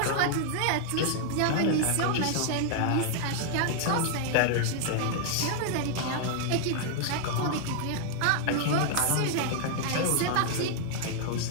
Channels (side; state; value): both; different; correlation 0.00